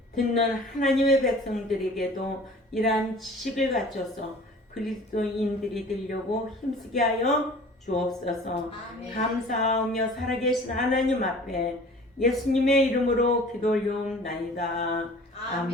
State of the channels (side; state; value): both; normal; correlation 0.46